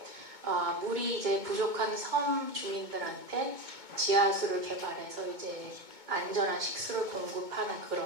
물이 이제 부족한 섬 주민들한테 지하수를 개발해서 이제 안전한 식수를 공급하는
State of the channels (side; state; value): left; late; 2.2 ms